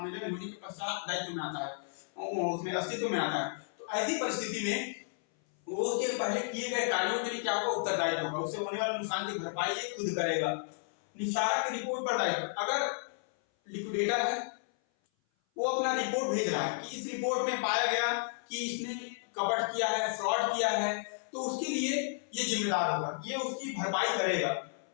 होने के पश्चात दायित्व में आता है, उसमें अस्तित्व में आता है, तो ऐसी परिस्थिति में वो उसके पहले किए गए कार्यों के लिए क्या होगा, उत्तरदायित्व होगा। उससे होने वाले नुकसान की भरपाई ये खुद करेगा। निस्तारा की रिपोर्ट पर दायित्व, अगर लिक्विडेटर है वो अपना रिपोर्ट भेज रहा है कि इस रिपोर्ट में पाया गया कि इसने कपट किया है, फ्रॉड किया है, तो उसके लिए ये जिम्मेदार होगा, ये उसकी भरपाई करेगा।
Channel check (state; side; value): silent; right; 56 dB below the other